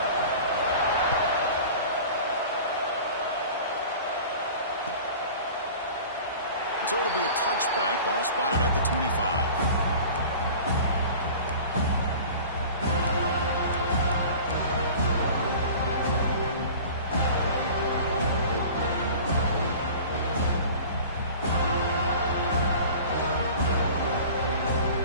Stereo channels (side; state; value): both; inverted; correlation -0.41